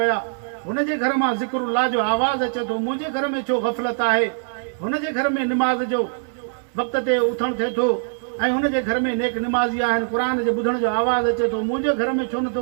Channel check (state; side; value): silent; left; digital silence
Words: हुनजे घर मां ज़िक्रुल्लाह जो आवाज़ अचे थो, मुंहिंजे घर में छो ग़फ़लत आहे? हुनजे घर में निमाज़ जो वक़्त ते उथणु थिए थो ऐं हुनजे घर में नेक निमाज़ी आहिनि, क़ुर जे ॿुधण जो आवाज़ अचे थो, मुंहिंजे घर में छो नथो